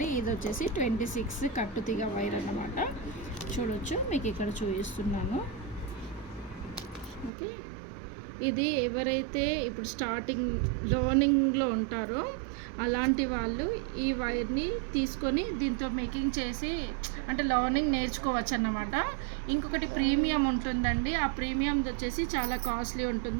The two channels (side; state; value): left; drops out; at 7.3 s